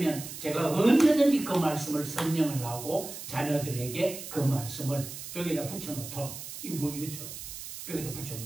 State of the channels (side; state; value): right; noise; hiss, 10 dB below the sound